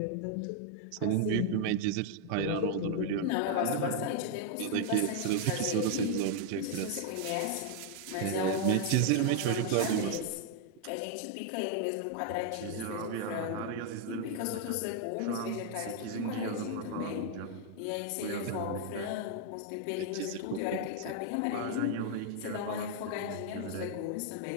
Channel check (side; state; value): both; different; correlation 0.00